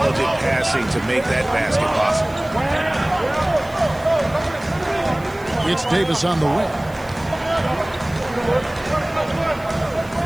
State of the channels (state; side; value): noise; right; hiss, 24 dB below the sound